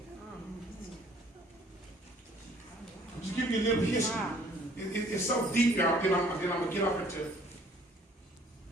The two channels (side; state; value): both; normal; correlation 0.57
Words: Just give you a little history. It's so deep, y'all. Then I'm going to get off into it.